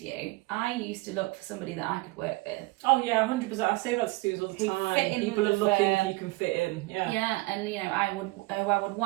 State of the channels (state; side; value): quieter; left; 22.3 dB